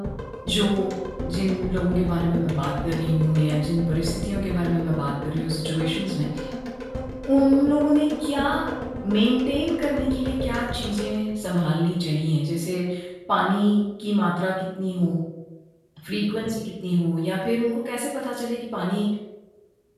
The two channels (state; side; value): identical; both; correlation 1.00